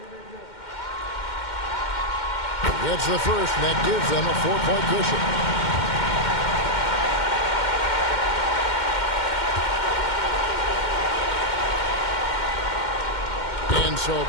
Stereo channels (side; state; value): right; late; 2.1 ms